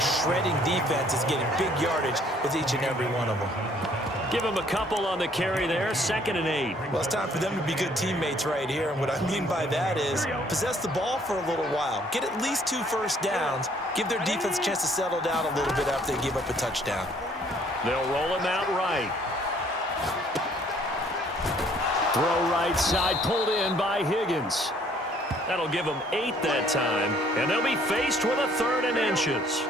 shredding defenses, getting big yardage with each and every one of them. Give him a couple on the carry there. 2nd and 8. Well, it's time for them to be good teammates right here. And what I mean by that is possess the ball for a little while. Get at least 2 first downs. Give their defense a chance to settle down a little bit after they give up a touchdown. They'll roll him out right. Throw right side, pulled in by Higgins. That'll give them 8 that time. And they'll be faced with a 3rd and inches.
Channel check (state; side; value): normal; both; correlation 0.61